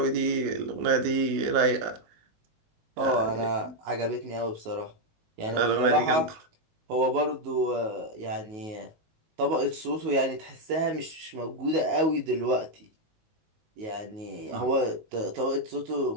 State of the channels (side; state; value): left; late; 19 ms